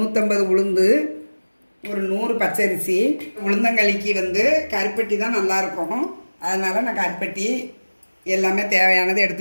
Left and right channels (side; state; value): both; inverted; correlation -1.00